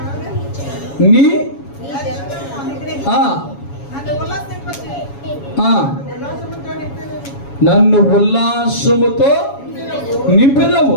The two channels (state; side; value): late; right; 7.2 ms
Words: నీ నన్ను ఉల్లాసముతో నింపెదవు.